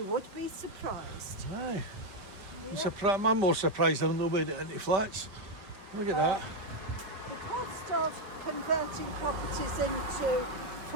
would be surprised. Aye. Yeah. I'm more surprised than nobody into flats. Look at that. The cost of converting properties into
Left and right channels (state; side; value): late; left; 5.2 ms